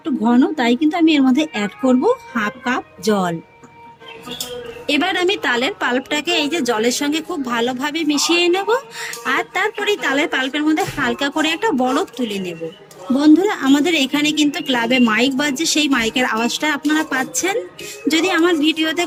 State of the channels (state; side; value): identical; both; correlation 1.00